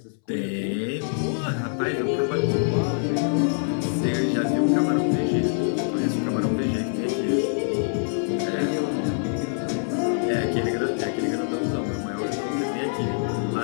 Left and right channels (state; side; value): silent; right; 62 dB below the other